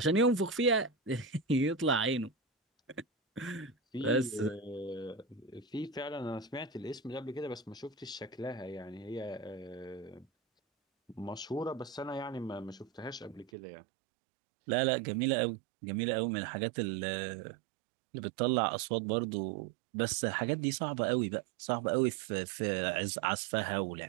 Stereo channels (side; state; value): left; drops out; at 13.5 s